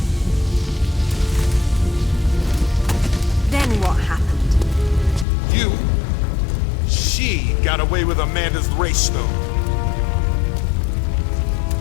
Then what happened? She got away with Amanda's race stone.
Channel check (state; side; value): drops out; right; at 5.2 s